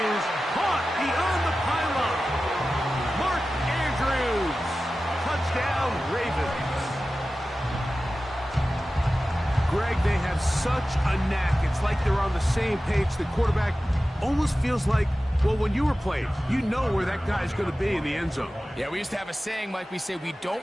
is caught beyond the pylon. Mark Andrews. Touchdown, Ravens. Greg, they have such a knack. It's like they're on the same page. The quarterback almost feels like, well, when you were playing, you know where that guy's going to be in the end zone. Yeah, we used to have a saying, Mike. We say we don't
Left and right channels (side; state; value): both; normal; correlation 0.95